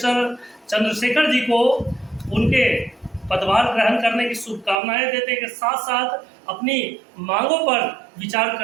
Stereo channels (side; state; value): left; drops out; at 4.8 s